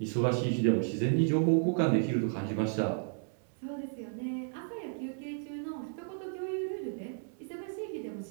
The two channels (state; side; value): silent; left; digital silence